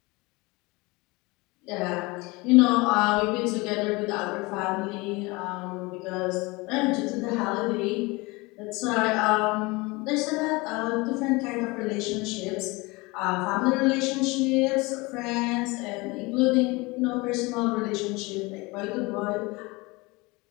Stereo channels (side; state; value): right; quieter; 24.3 dB